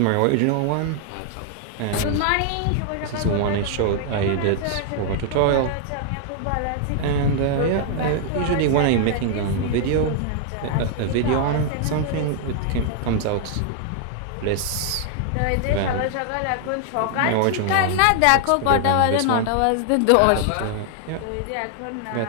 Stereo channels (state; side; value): different; both; correlation 0.00